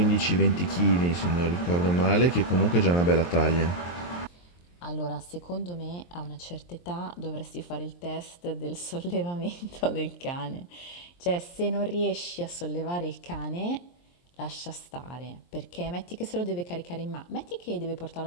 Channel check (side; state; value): right; late; 23 ms